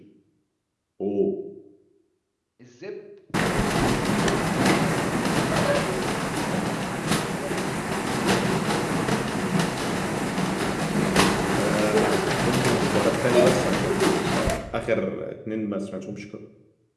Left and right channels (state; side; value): identical; both; correlation 1.00